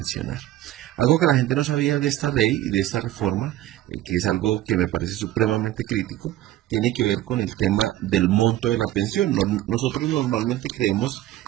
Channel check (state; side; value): quieter; left; 14.2 dB